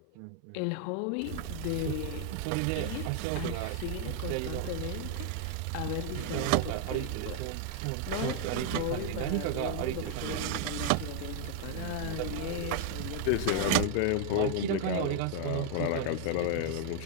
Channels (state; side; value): different; both; correlation 0.00